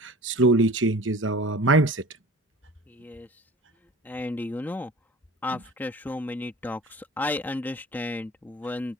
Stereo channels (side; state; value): both; normal; correlation 0.42